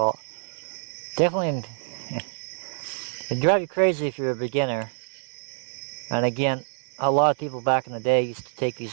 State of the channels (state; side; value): silent; left; digital silence